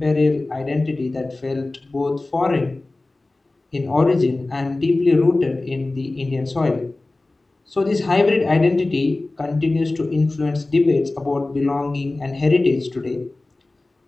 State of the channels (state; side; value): quieter; right; 3.0 dB